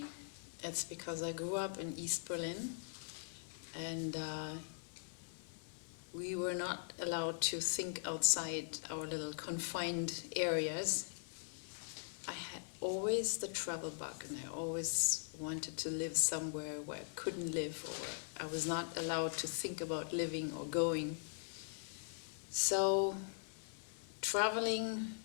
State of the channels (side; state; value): right; silent; 50 dB below the other